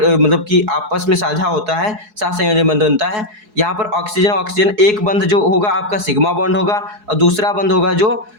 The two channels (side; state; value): left; late; 4.7 ms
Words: मतलब कि आपस में साझा होता है, सहसंयोजन बंध बनता है। यहाँ पर ऑक्सीजन एक बंध जो होगा आपका सिग्मा बॉन्ड होगा और दूसरा बंध होगा जो